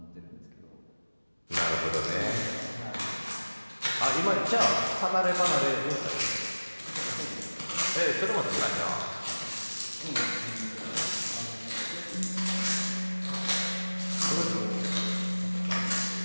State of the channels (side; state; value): both; inverted; correlation -1.00